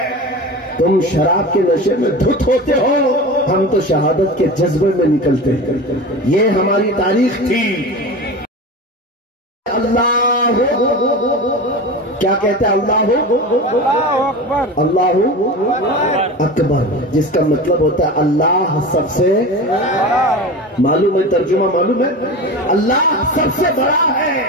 تم شراب کے نشے میں دھت ہوتے ہو، ہم تو شہادت کے جذبے میں نکلتے ہیں۔ یہ ہماری تاریخ تھی۔ اللہ کیا کہتے ہیں؟ اللہ اکبر، جس کا مطلب ہوتا ہے اللہ سب سے، معلوم ہے ترجمہ معلوم ہے؟ اللہ سب سے بڑا ہے۔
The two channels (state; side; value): normal; both; correlation 0.29